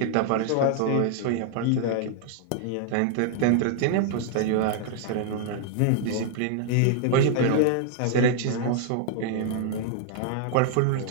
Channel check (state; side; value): different; both; correlation 0.00